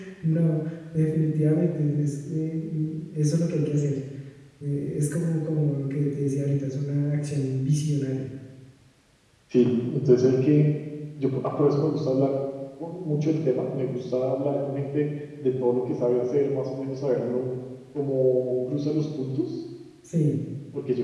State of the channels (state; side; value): identical; both; correlation 1.00